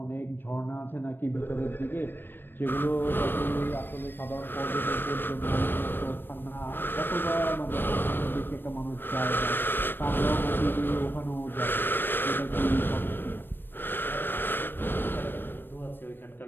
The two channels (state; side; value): late; right; 0.096 ms